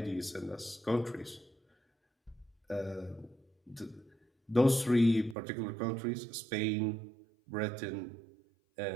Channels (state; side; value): drops out; left; at 5.4 s